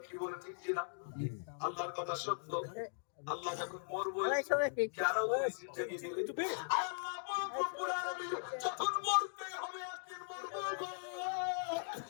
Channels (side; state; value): right; silent; digital silence